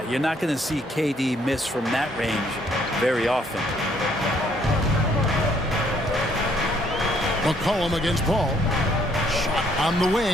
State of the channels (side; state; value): both; normal; correlation 0.66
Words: you're not going to see KD miss from that range very often. McCollum against Paul. Shot on the